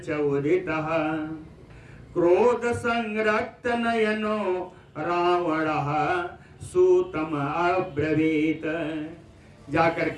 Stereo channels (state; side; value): identical; both; correlation 1.00